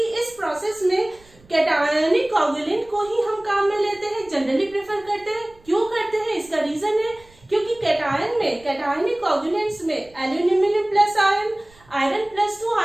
इस process में cationic coagulant को ही हम काम में लेते हैं, जनरली प्रेफर करते हैं। क्यों करते हैं? इसका रीजन है क्योंकि कैटायन में, कैटायनिक कोगुलेंट्स में aluminium plus ion, iron plus 2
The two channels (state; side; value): noise; right; rumble, 27 dB below the sound